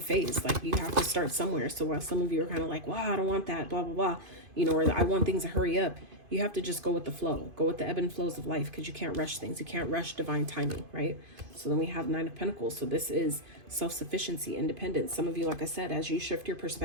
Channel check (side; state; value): left; late; 2.5 ms